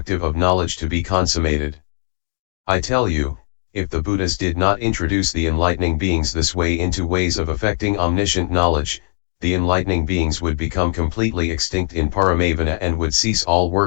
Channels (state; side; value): silent; right; digital silence